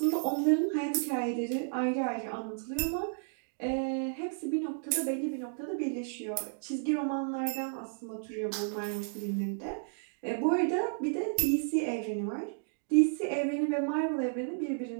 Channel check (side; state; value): left; silent; digital silence